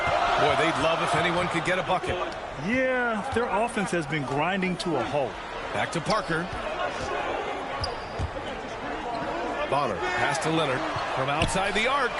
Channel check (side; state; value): both; identical; correlation 1.00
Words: Boy, they'd love if anyone could get a bucket. Yeah, their offense has been grinding to a halt. Back to Parker. Bonner. Pass to Leonard. From outside the arc.